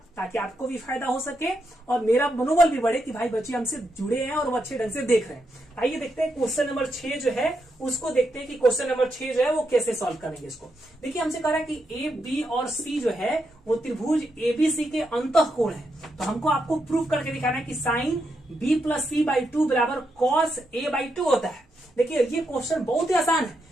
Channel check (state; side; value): normal; both; correlation 0.82